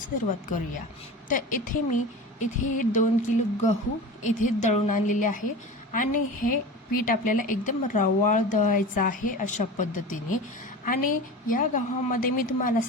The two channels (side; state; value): both; normal; correlation 0.32